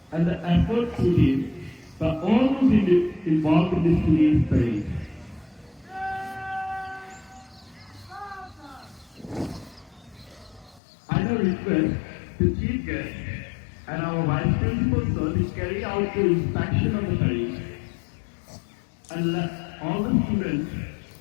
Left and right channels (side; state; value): right; drops out; at 10.8 s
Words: and the effort put in by all those involved in this today's parade. I now request the chief guest and our vice principal sir to carry out the inspection of the parade and let all the students